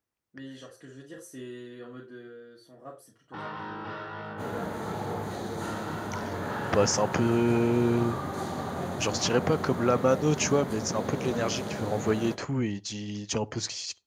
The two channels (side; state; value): both; identical; correlation 1.00